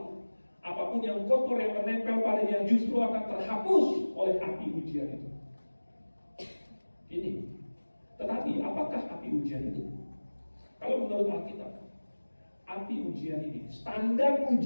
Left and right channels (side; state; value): both; inverted; correlation -1.00